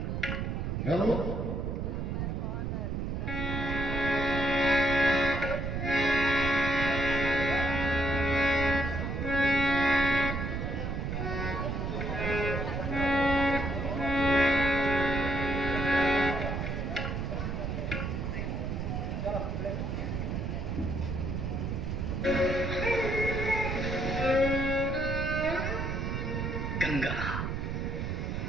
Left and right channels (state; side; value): noise; right; rumble, 2 dB below the sound